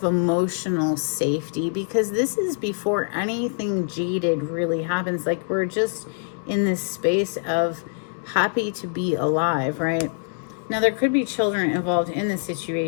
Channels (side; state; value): right; silent; 62 dB below the other